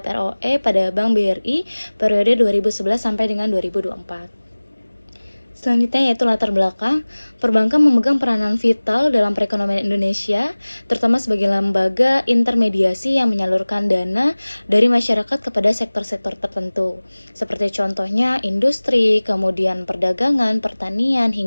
ROE pada Bank BRI periode 2011 sampai dengan 2024. Selanjutnya yaitu latar belakang. Perbankan memegang peranan vital dalam perekonomian Indonesia, terutama sebagai lembaga intermediasi yang menyalurkan dana dari masyarakat kepada sektor-sektor tertentu, seperti contohnya industri, kemudian perdagangan, pertanian,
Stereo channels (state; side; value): inverted; both; correlation -1.00